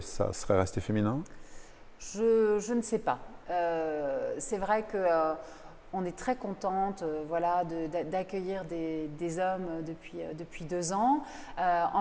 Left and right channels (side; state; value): both; identical; correlation 1.00